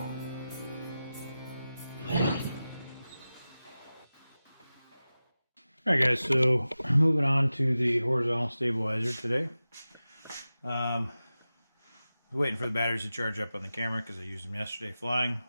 Alright guys, so moving on to the horizontal stabilizer today. I was waiting for the batteries to charge up on the camera because I used them yesterday flying.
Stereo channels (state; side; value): inverted; both; correlation -0.95